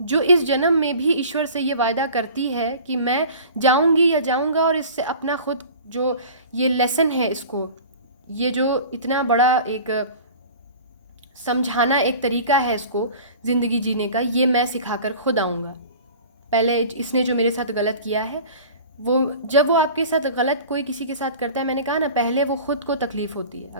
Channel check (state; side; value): inverted; both; correlation -0.41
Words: इस जन्म में भी ईश्वर से ये वायदा करती है कि मैं जाऊंगी या जाऊंगा और इससे अपना खुद जो ये लेसन है, इसको ये जो इतना बड़ा एक समझाना एक तरीका है इसको ज़िंदगी जीने का, ये मैं सिखाकर खुद आऊँगा। पहले इसने जो मेरे साथ गलत किया है जब वो आपके साथ गलत कोई किसी के साथ करता है, मैंने कहा ना पहले वो खुद को तकलीफ़ होती है।